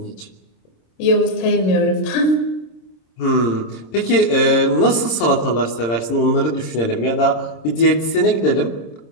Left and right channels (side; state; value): right; late; 26 ms